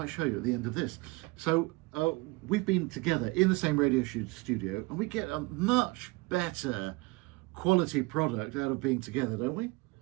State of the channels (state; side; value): quieter; left; 24.9 dB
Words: show you at the end of this. So we've been together in the same radio studio, and we get a much better quality product out of being together, don't we?